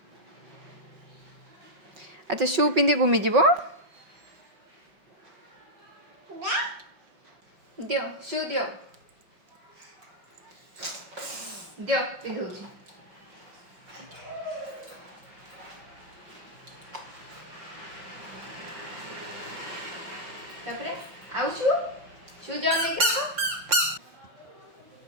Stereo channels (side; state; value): left; late; 5.6 ms